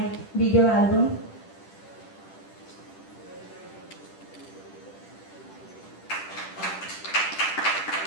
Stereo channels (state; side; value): late; right; 10 ms